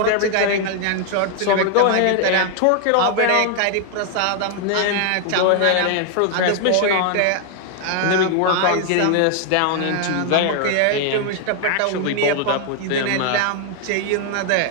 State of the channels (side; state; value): both; different; correlation 0.00